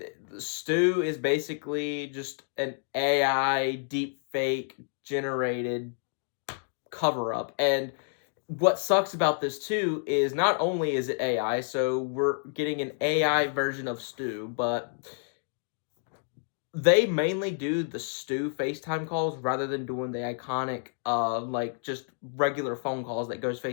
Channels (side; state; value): right; silent; digital silence